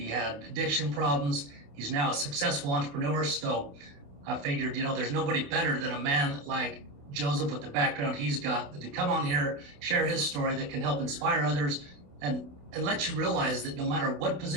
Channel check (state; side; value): late; left; 28 ms